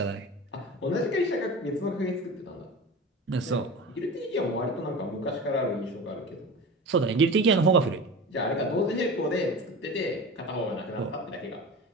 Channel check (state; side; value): normal; both; correlation 0.32